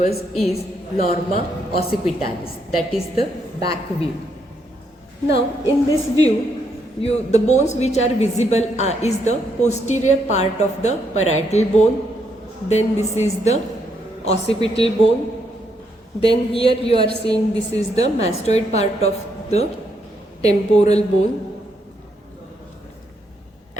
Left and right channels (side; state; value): both; normal; correlation 0.76